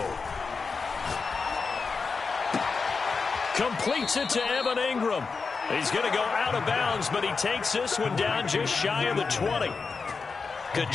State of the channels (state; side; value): quieter; right; 4.8 dB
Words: Completes it to Evan Ingram. He's going to go out of bounds, but he takes this one down just shy of the 20. Good